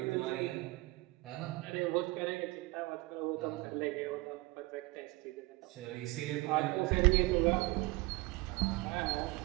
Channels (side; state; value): left; quieter; 22.2 dB